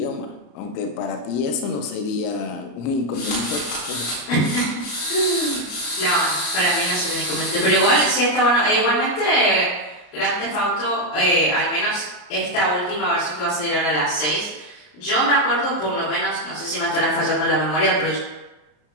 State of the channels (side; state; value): right; late; 33 ms